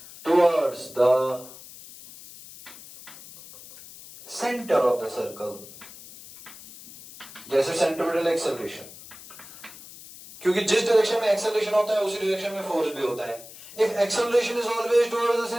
towards the center of the circle. जैसे सेंट्रिपिटल एक्सेलरेशन, क्योंकि जिस डायरेक्शन में एक्सेलरेशन होता है उसी डायरेक्शन में फोर्स भी होता है। If acceleration is always towards the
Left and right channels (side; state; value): left; noise; hiss, 17 dB below the sound